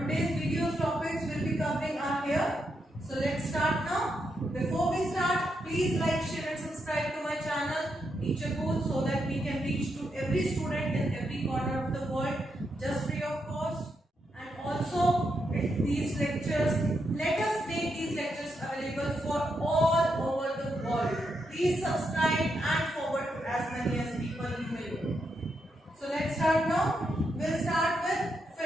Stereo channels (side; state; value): both; normal; correlation 0.82